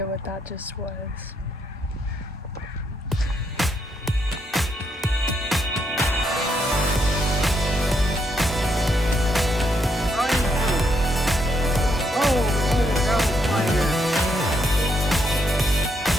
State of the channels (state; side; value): normal; both; correlation 0.76